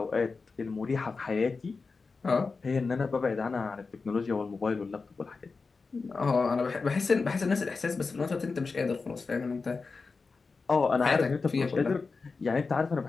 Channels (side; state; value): right; quieter; 4.4 dB